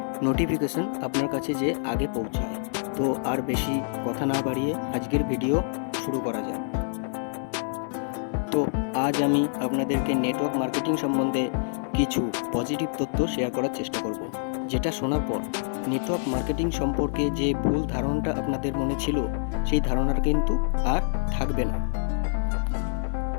নোটিফিকেশন আপনার কাছে যে আগে পৌঁছায়। তো আর বেশি কথা না বাড়িয়ে আজকের ভিডিও শুরু করা যাক। তো আজ আমি আপনাদেরকে নেটওয়ার্ক মার্কেটিং সম্বন্ধে কিছু পজিটিভ তথ্য শেয়ার করার চেষ্টা করব, যেটা শোনার পর নেটওয়ার্ক মার্কেটিং সম্পর্কে যে ভুল ধারণাটা আপনাদের মনে ছিল, সেই ধারণাটা কিন্তু আর থাকবে না।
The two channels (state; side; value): silent; right; 56 dB below the other